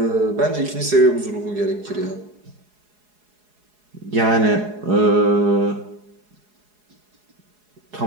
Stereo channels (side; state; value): left; late; 4.8 ms